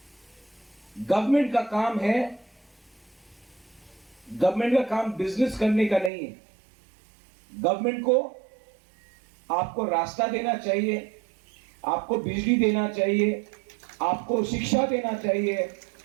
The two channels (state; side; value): drops out; left; at 6.1 s